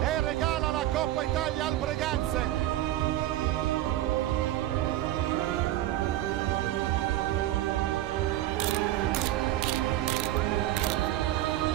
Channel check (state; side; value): quieter; left; 14.3 dB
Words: e regala la Coppa Italia al Breganze.